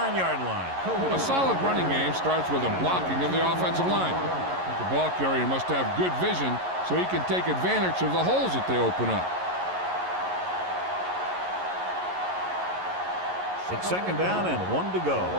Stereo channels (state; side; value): late; left; 11 ms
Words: line. A solid running game starts with a blocking of the offensive line. The ball carrier must have good vision so he can take advantage of the holes that they open up. It's second down and 1 to go. On